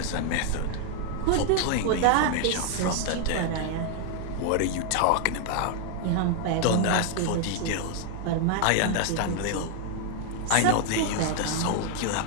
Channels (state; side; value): different; both; correlation 0.00